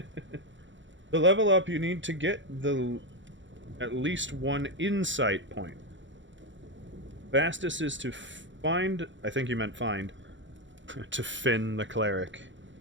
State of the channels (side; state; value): left; late; 0.54 ms